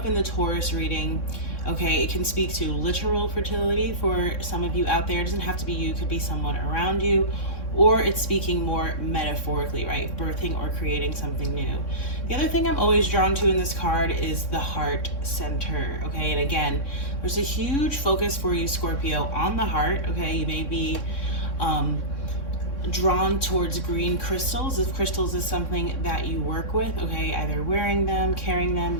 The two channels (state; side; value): late; right; 3.6 ms